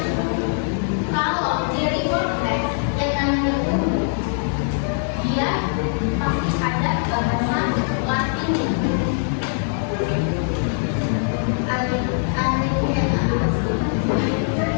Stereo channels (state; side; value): silent; right; digital silence